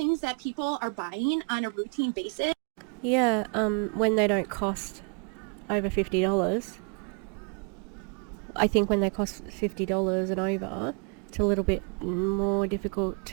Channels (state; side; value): quieter; left; 37.3 dB